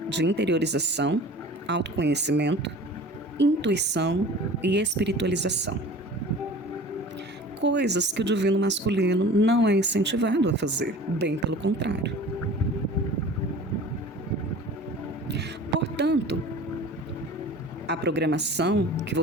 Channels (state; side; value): normal; both; correlation 0.41